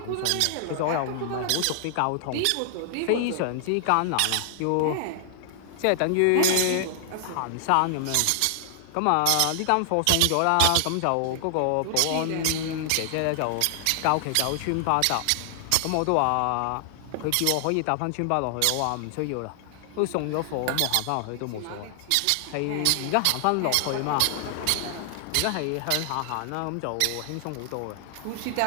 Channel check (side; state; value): both; different; correlation 0.00